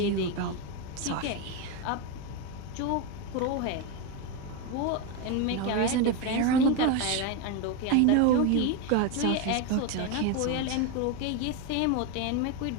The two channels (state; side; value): different; both; correlation 0.03